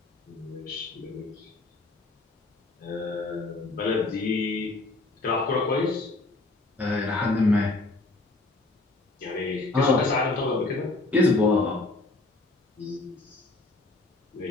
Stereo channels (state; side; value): quieter; right; 3.1 dB